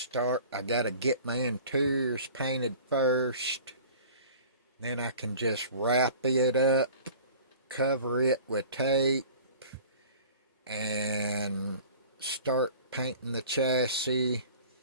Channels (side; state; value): both; inverted; correlation -0.44